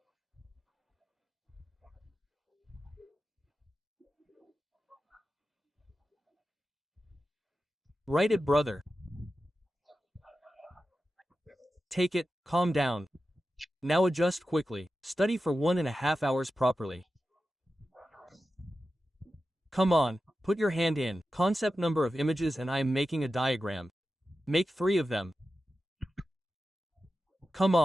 Write it, brother. Take it, calm down. Now adjust quickly. Study for 1.5 hours properly. Come on, put your hand in. Concept number of images and I am making a diagram. Make 3 of them. Come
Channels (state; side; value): normal; both; correlation 0.92